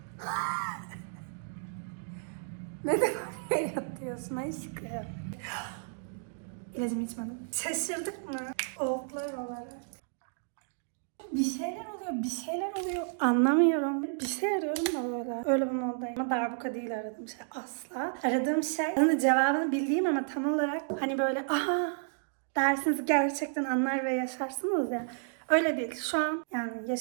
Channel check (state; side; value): silent; left; digital silence